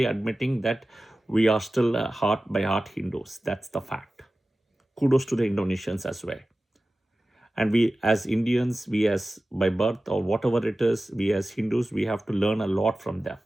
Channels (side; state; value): both; normal; correlation 0.96